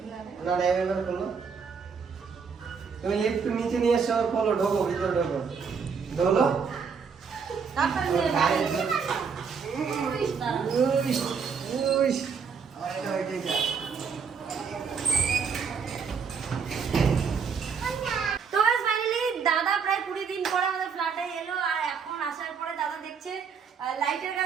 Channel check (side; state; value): left; quieter; 6.0 dB